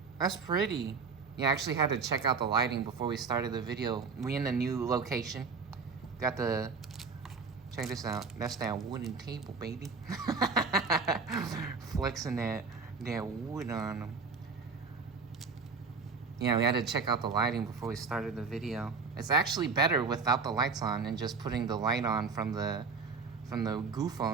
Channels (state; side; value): quieter; left; 4.7 dB